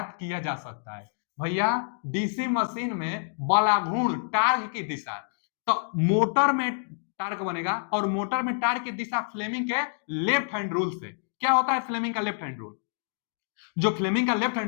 किया जा सकता है। भैया डीसी मशीन में बलागुण टार्क की दिशा, तो मोटर में टार्क बनेगा और मोटर में टार्क की दिशा फ्लेमिंग के लेफ्ट हैंड रूल से। क्या होता है फ्लेमिंग का लेफ्ट हैंड रूल? जो फ्लेमिंग का लेफ्ट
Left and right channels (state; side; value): silent; right; digital silence